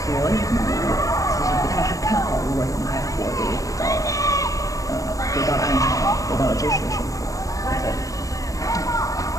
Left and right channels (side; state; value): right; late; 0.16 ms